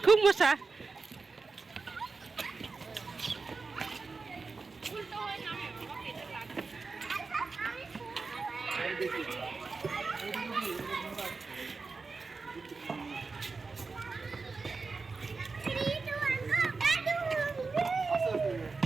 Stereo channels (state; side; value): quieter; left; 4.3 dB